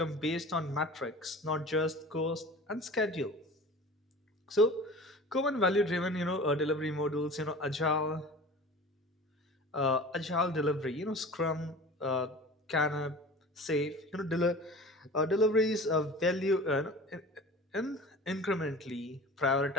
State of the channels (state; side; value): normal; both; correlation 0.39